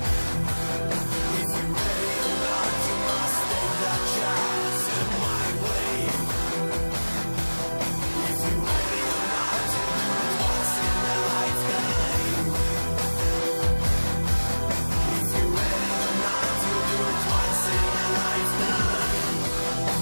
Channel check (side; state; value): both; inverted; correlation -1.00